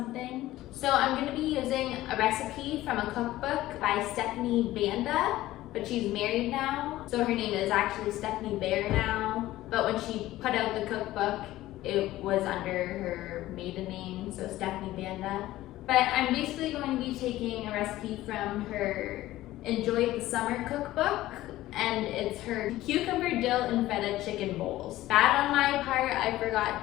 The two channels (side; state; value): right; quieter; 15.8 dB